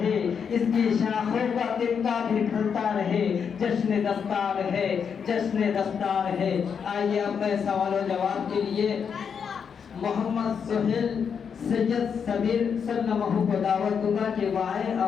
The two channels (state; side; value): quieter; right; 6.8 dB